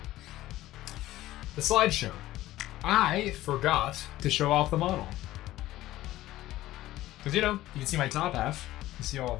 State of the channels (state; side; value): quieter; right; 15.6 dB